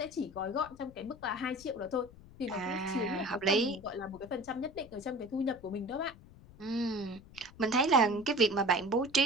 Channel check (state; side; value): noise; left; rumble, 21 dB below the sound